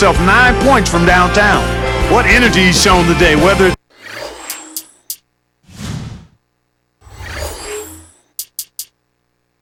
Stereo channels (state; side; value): identical; both; correlation 1.00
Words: 9 points from downtown. What energy he's shown today, whether it's